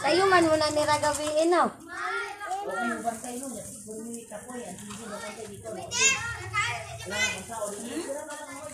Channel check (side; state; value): both; identical; correlation 1.00